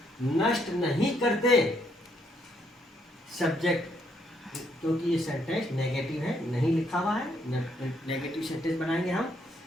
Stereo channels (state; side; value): normal; both; correlation 0.73